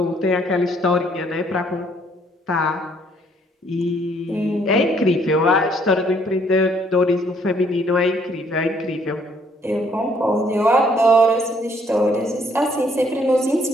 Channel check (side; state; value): both; normal; correlation 0.65